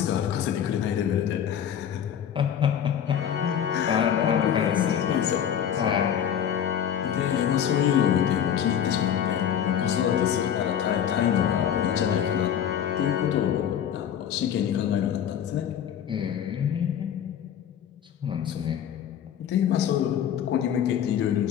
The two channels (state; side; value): quieter; right; 9.2 dB